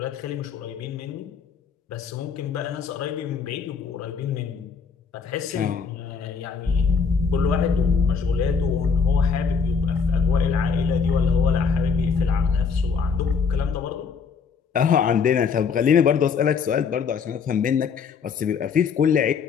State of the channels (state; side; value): quieter; right; 5.9 dB